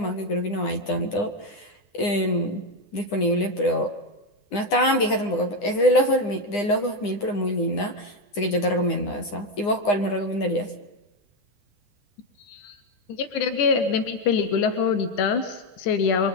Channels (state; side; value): late; right; 9.8 ms